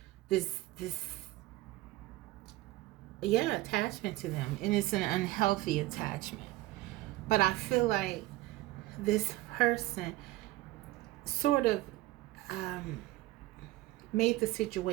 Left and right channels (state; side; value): quieter; left; 18.0 dB